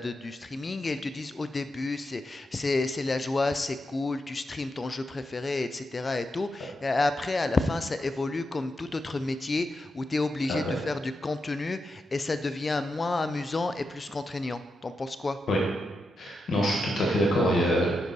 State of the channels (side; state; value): both; normal; correlation 0.87